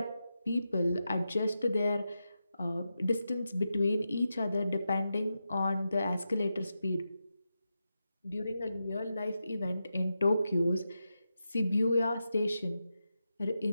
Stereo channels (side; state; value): both; inverted; correlation -0.89